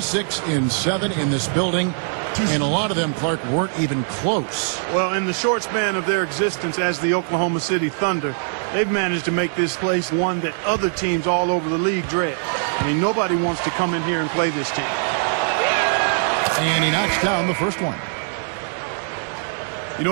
in this building. And a lot of them, Clark, weren't even close. Well, in the short span of their existence as the Oklahoma City Thunder, they've managed to make this place one that other teams all over the league dread. I mean, nobody wants to come in here and play this team. And he knocks down the first one. You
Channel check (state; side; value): silent; left; 64 dB below the other